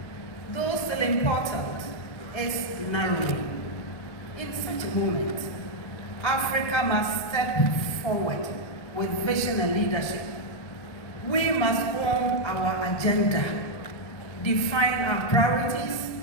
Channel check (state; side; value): late; right; 1.7 ms